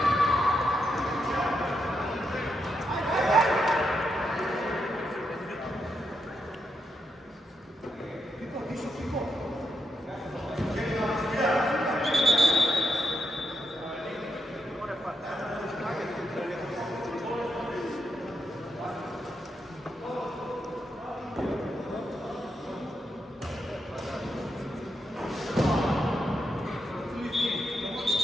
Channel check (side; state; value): both; normal; correlation 0.82